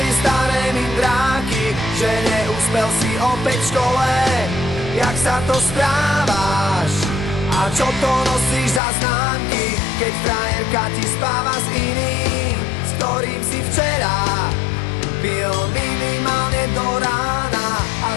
tie staré mindráky, že neúspel si opäť v škole. Jak sa to správaš? A čo to nosíš za známky, keď frajerka ti spáva s iným, s ktorým si včera pil minimálne do rána a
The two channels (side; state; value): right; drops out; at 8.8 s